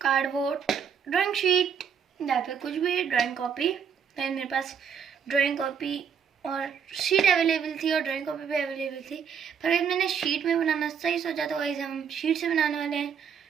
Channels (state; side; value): quieter; left; 7.1 dB